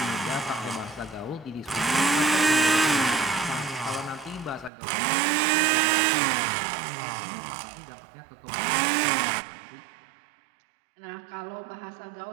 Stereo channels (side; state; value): left; drops out; at 4.7 s